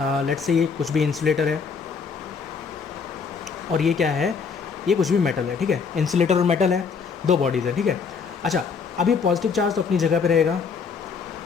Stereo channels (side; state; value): right; quieter; 5.6 dB